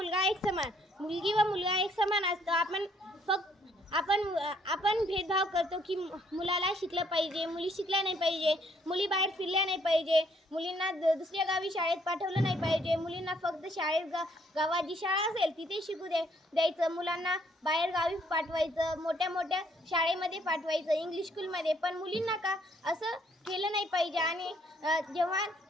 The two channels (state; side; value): normal; both; correlation 0.67